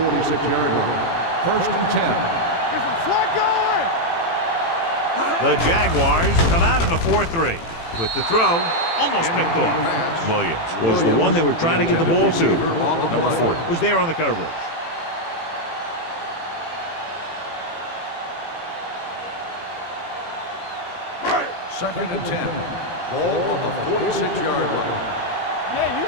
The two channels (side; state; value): right; late; 18 ms